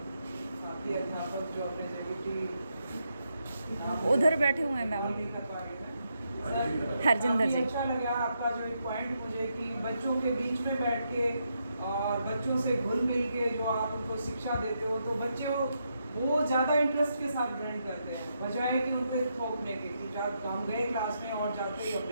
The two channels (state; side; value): inverted; both; correlation -0.81